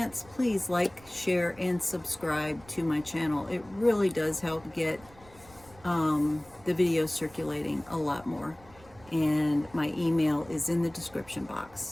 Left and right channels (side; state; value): right; noise; rumble, 24 dB below the sound